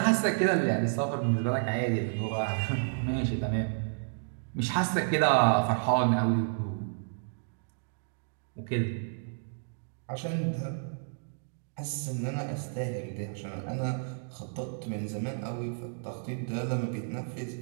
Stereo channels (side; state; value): left; silent; digital silence